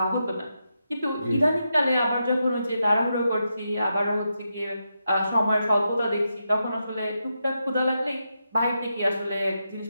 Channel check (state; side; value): inverted; both; correlation -0.85